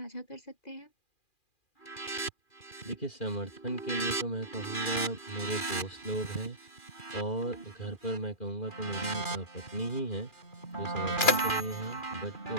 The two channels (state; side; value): late; right; 2.4 ms